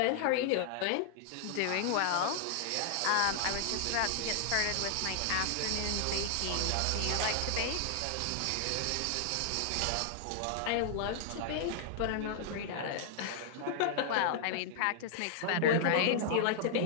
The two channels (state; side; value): different; both; correlation 0.00